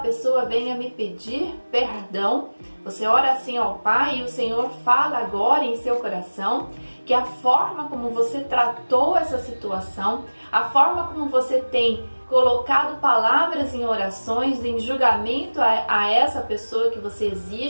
venha me pedir perdão. Você ora assim ao Pai e o Senhor fala agora em seu coração que a forma como você tratou essa situação, a forma como você tem colocado palavras em orações, em julgamento a essa pessoa que você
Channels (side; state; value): both; inverted; correlation -1.00